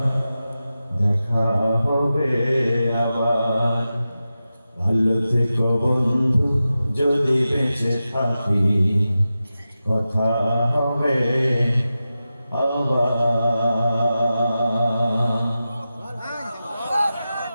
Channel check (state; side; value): inverted; both; correlation -0.92